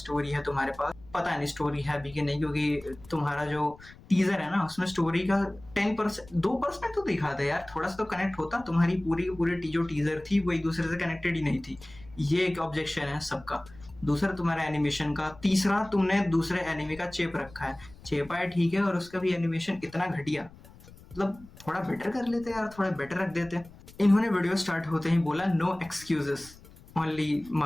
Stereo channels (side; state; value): left; noise; rumble, 21 dB below the sound